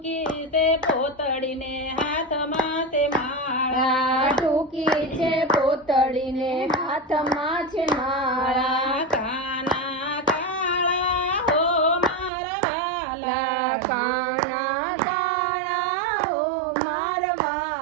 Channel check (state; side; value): drops out; left; at 12.3 s